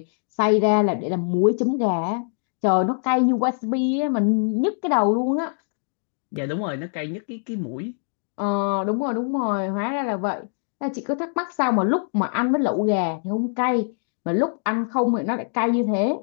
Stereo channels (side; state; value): right; silent; digital silence